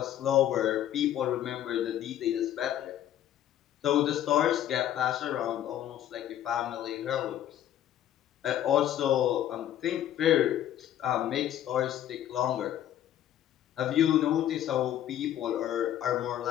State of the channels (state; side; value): quieter; right; 11.6 dB